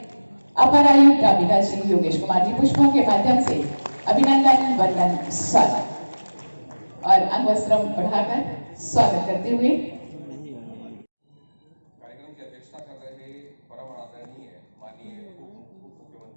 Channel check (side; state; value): both; inverted; correlation -1.00